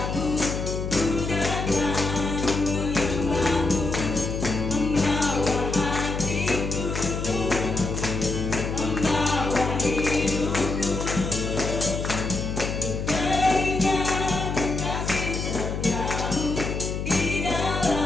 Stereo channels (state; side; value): noise; left; hum, 3 dB below the sound